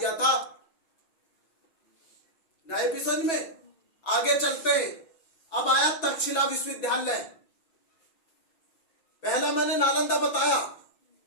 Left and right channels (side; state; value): right; late; 5.9 ms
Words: था। नए एपिसोड में आगे चलते हैं। अब आया तक्षशिला विश्वविद्यालय। पहला मैंने नालंदा बताया,